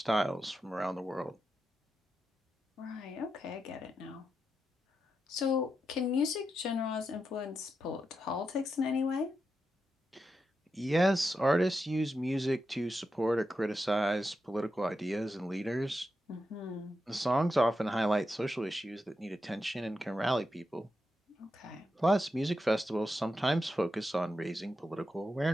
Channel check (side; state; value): both; normal; correlation 0.87